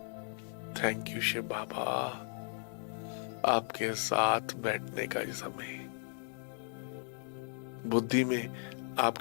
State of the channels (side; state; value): right; silent; 54 dB below the other